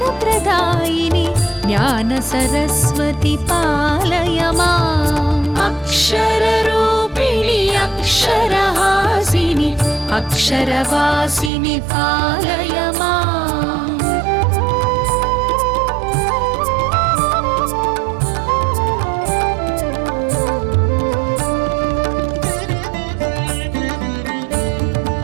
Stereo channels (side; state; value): left; drops out; at 11.5 s